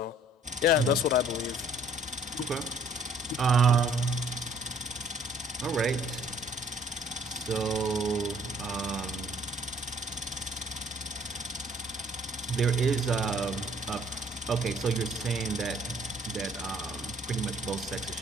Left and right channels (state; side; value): normal; both; correlation 0.59